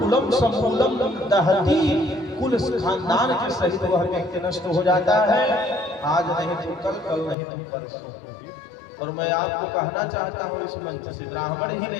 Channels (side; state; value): right; drops out; at 7.4 s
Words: कुलम समूलम दहती, कुल खानदान के सहित वह व्यक्ति नष्ट हो जाता है। आज नहीं तो कल, कल नहीं तो परसों। और मैं आपको कहना चाहता हूँ इस मंच से, ब्राह्मण ही